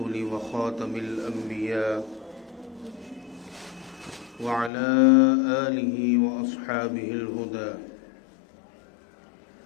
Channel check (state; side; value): drops out; right; at 4.7 s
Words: وخاتم الأنبياء وعلى آله وأصحابه الهدى.